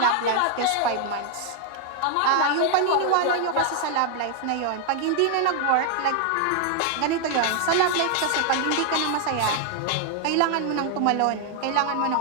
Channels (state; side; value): different; both; correlation 0.00